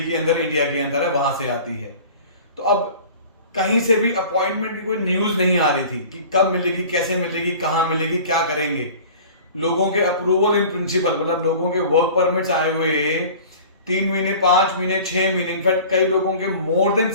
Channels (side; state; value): both; inverted; correlation -0.42